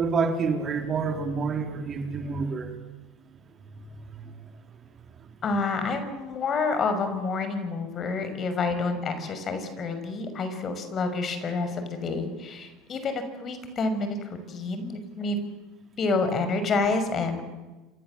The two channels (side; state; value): both; normal; correlation 0.59